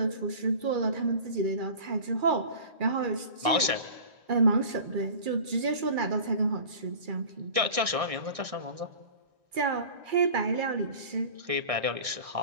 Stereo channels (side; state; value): left; late; 1.6 ms